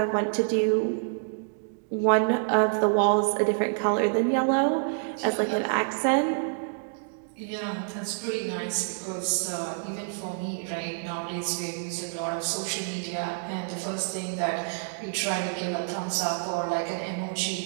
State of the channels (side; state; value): left; silent; digital silence